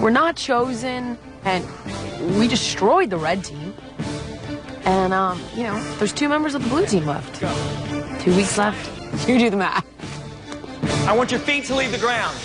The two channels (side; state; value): both; identical; correlation 1.00